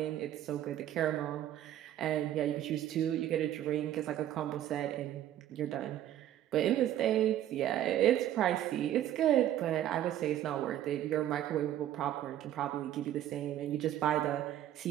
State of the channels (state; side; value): quieter; left; 12.0 dB